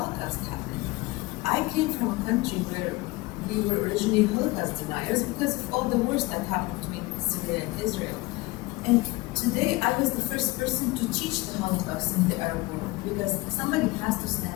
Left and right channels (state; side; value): quieter; right; 22.3 dB